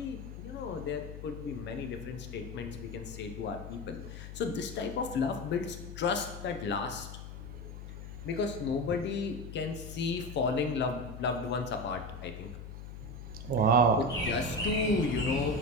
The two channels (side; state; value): left; noise; hum, 10 dB below the sound